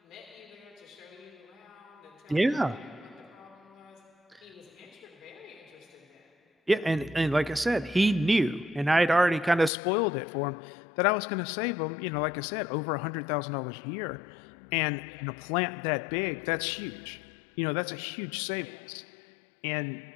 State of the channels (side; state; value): right; drops out; at 9.7 s